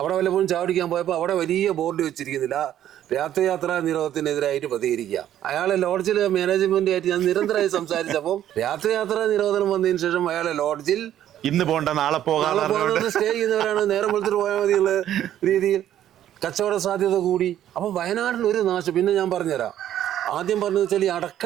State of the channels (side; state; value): left; quieter; 11.5 dB